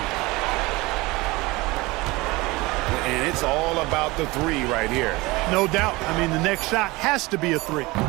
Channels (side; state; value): left; quieter; 22.0 dB